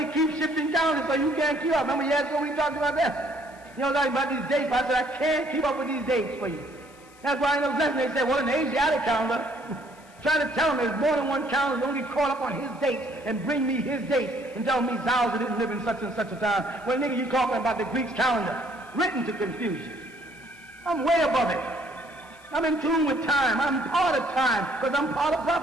keep shifting calendars so you can't keep up. Remember years ago we talked about that? You know, talking about these dates. I said, I can't keep up with these dates for you. That's why in those lessons they said, well, in the Asiatic calendar, try to tell them there's more than one calendar. Don't get caught up on his dates and bring me his dates and tell me Zauser didn't live in such and such a time. Well, nigga, you talking about the Greek's calendar, written to confusion. I'm way above it. I'm in tune with time. I'm part of time because I'm part of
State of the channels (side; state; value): left; noise; hiss, 27 dB below the sound